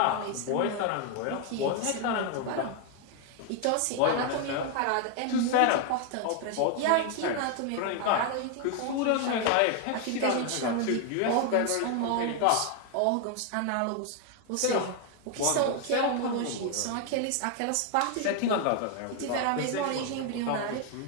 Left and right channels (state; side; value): different; both; correlation 0.01